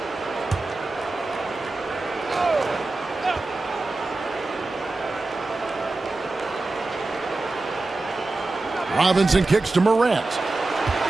Robinson kicks to Morant.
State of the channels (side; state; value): left; quieter; 3.2 dB